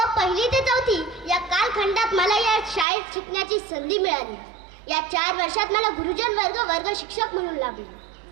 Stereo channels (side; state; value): left; drops out; at 2.9 s